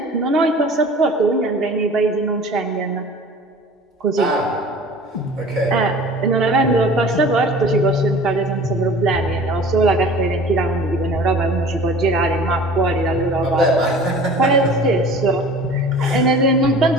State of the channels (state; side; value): normal; both; correlation 0.44